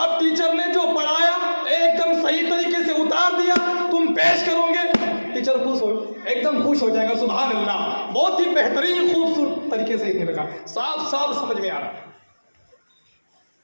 टीचर ने जो पढ़ाया एकदम सही तरीके से उतार दिया, तुम पेश करोगे, टीचर खुश हो, एकदम खुश हो जाएगा। सुभान अल्लाह, बहुत ही बेहतरीन खूबसूरत तरीके से इसने लिखा, साफ साफ समझ में आ रहा है।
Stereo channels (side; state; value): both; inverted; correlation -1.00